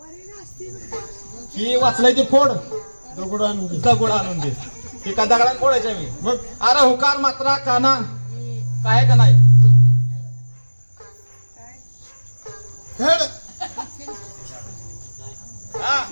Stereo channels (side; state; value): both; inverted; correlation -1.00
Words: ही वाचलंय ते फोड. दगड आणून दे. दगड आणून दे. ती का दगडात फोडायच्या मी? मग अरे हुकार मात्रा काना काय का नाही? हेड हा